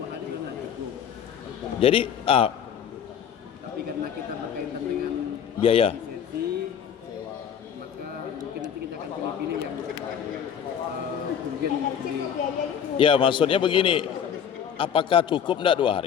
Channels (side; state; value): right; quieter; 8.2 dB